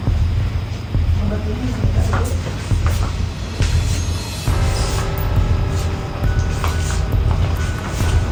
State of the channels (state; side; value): identical; both; correlation 1.00